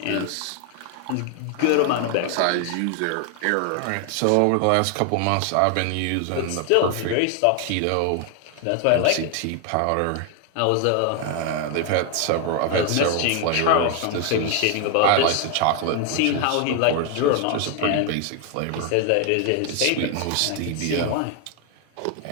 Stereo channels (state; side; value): different; both; correlation 0.01